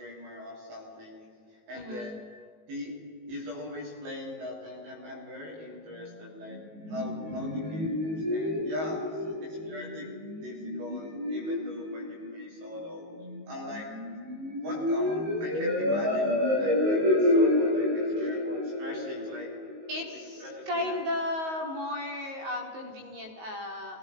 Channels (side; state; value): left; late; 19 ms